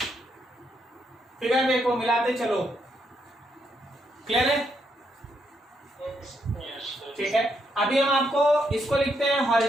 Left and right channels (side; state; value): both; normal; correlation 0.77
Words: फिगर देखो, मिलाते चलो, क्लियर है? ठीक है। अभी हम आपको इसको लिखते हैं